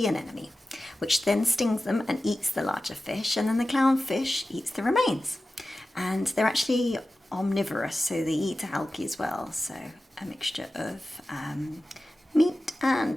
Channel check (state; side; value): normal; both; correlation 0.94